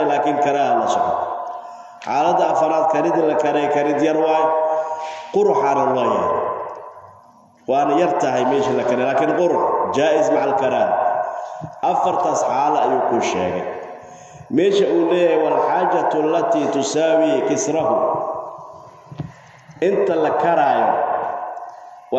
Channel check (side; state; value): both; identical; correlation 1.00